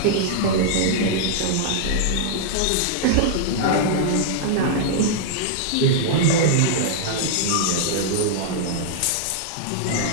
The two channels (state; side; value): different; both; correlation -0.01